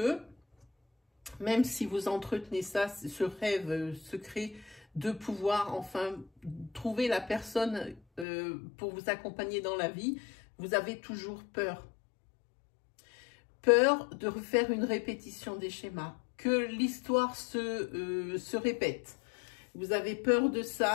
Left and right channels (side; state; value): right; drops out; at 8.2 s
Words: même si vous entretenez ça, ce rêve secret de pouvoir enfin trouver la personne pour vous accompagner dans la vie, vous avez toujours peur. Peur de refaire une répétition des schémas, que l'histoire se répète. Vous avez peur de